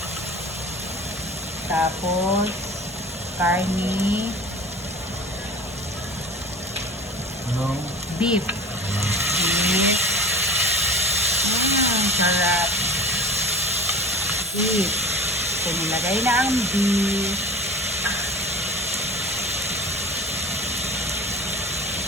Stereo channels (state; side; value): normal; both; correlation 0.39